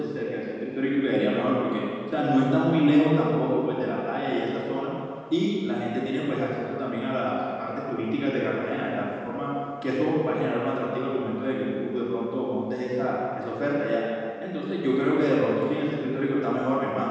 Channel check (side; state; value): both; identical; correlation 1.00